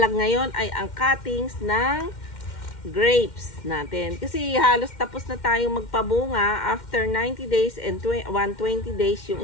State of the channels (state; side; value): late; right; 2.1 ms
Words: ngayon ay ang cuttings ng grapes natin. Kasi halos tapos na tayong magpabunga after 90 days and 120 days yung